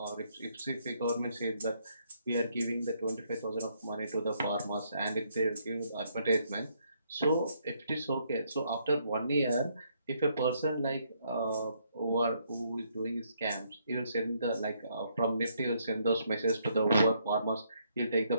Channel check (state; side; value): inverted; both; correlation -0.72